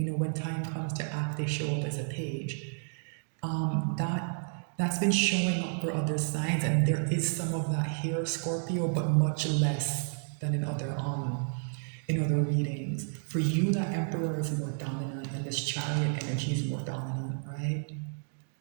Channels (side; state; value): left; silent; 57 dB below the other